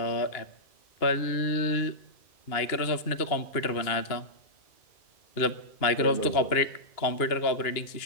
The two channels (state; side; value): late; right; 2.8 ms